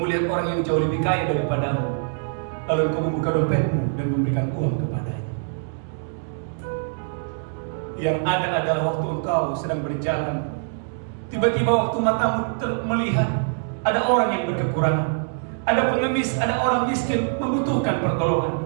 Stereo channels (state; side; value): silent; left; digital silence